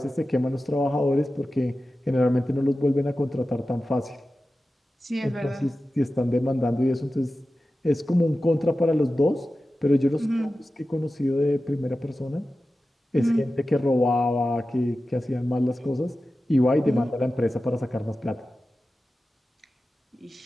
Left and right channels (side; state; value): both; normal; correlation 0.94